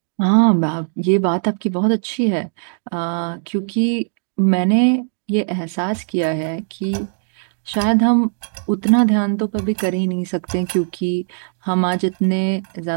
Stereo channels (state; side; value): silent; left; digital silence